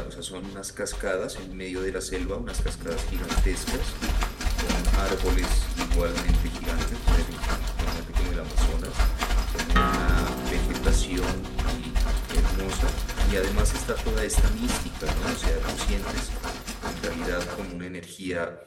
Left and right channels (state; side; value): identical; both; correlation 1.00